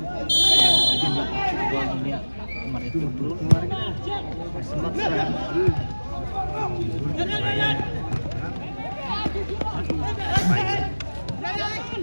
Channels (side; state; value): both; inverted; correlation -1.00